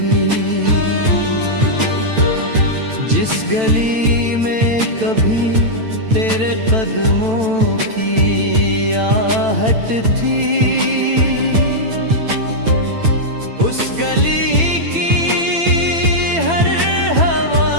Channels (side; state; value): left; late; 9.0 ms